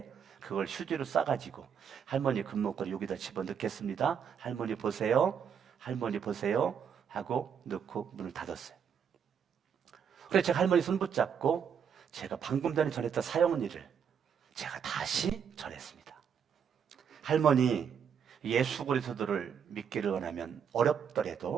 그걸 휴지로 싸가지고 할머니 금목걸이 여기다 집어넣겠습니다. 할머니 보세요. 할머니 보세요. 하고 넣고 문을 닫았어요. 그래서 제가 할머니 손 붙잡고 제가 방금 전에 전했던 사형리를 제가 다시 전했습니다. 할머니, 예수 그리스도를 믿기를 원하면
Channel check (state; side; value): quieter; left; 7.5 dB